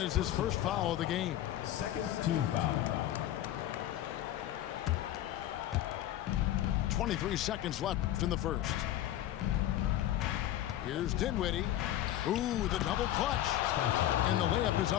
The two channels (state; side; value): quieter; right; 12.9 dB